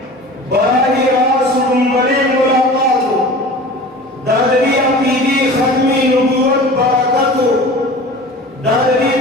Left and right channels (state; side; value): normal; both; correlation 0.39